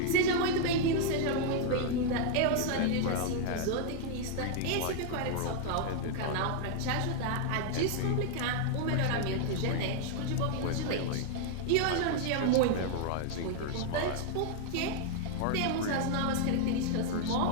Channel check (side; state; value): both; different; correlation 0.00